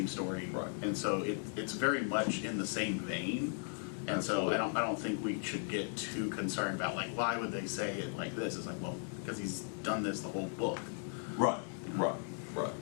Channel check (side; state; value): right; silent; 53 dB below the other